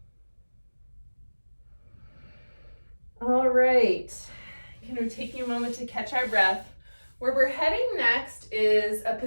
All right, taking a moment to catch our breath. Where we're heading next is a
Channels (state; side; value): inverted; both; correlation -1.00